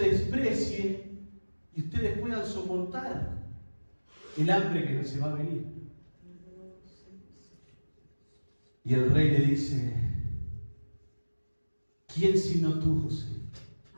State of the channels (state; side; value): inverted; both; correlation -1.00